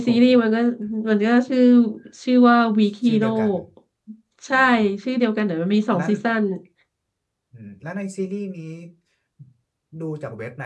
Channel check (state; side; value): identical; both; correlation 1.00